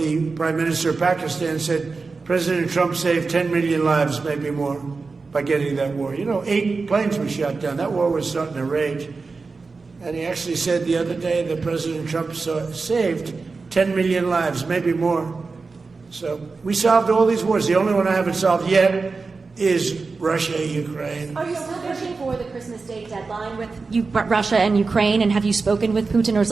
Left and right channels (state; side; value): quieter; left; 4.2 dB